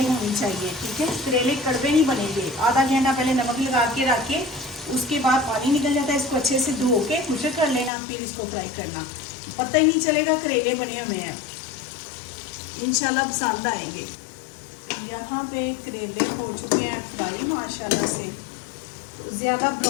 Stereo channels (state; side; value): drops out; right; at 7.9 s